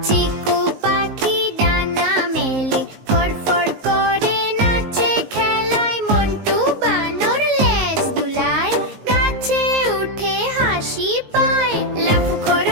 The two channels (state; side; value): late; left; 19 ms